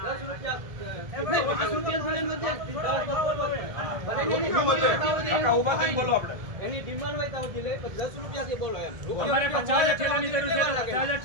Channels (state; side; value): late; left; 1.7 ms